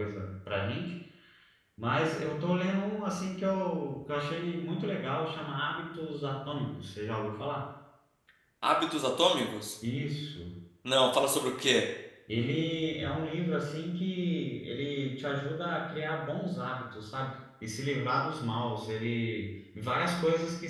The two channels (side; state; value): both; identical; correlation 1.00